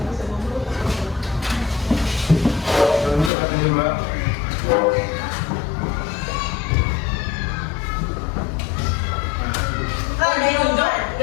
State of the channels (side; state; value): right; drops out; at 3.3 s